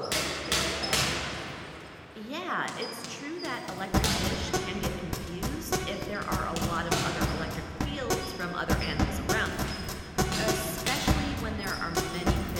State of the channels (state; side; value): identical; both; correlation 1.00